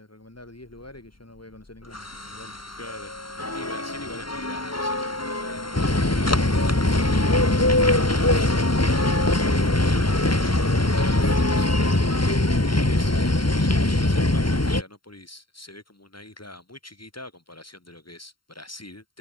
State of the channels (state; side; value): late; right; 0.73 ms